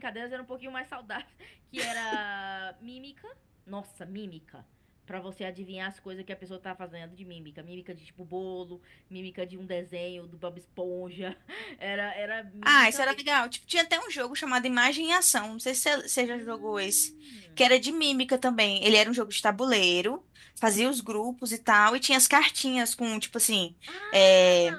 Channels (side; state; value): both; identical; correlation 1.00